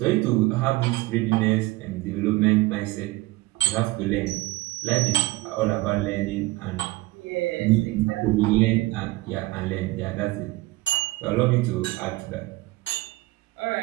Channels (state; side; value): quieter; left; 20.2 dB